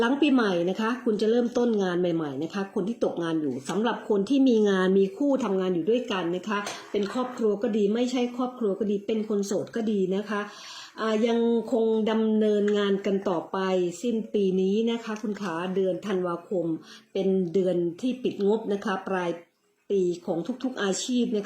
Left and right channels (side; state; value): both; identical; correlation 1.00